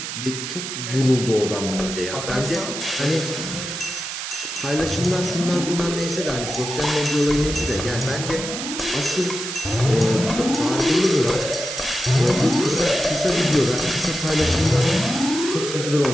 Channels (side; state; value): right; noise; hiss, 6 dB below the sound